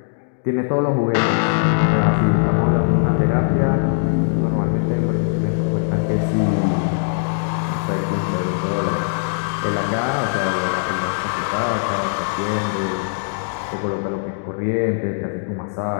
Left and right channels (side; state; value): right; silent; digital silence